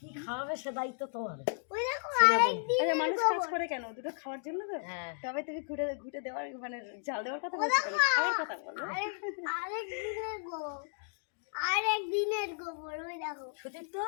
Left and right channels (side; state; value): right; silent; digital silence